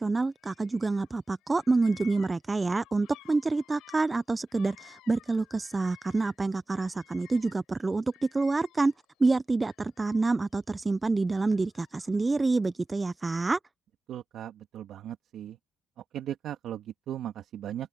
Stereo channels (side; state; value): left; quieter; 3.1 dB